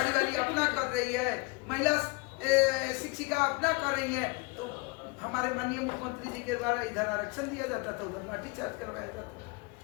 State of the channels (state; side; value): quieter; right; 28.2 dB